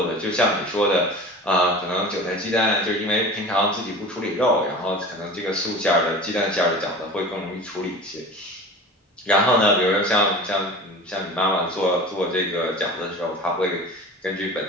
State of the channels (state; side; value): normal; both; correlation 0.37